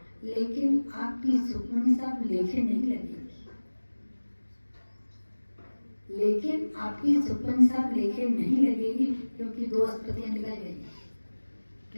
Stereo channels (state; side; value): inverted; both; correlation -1.00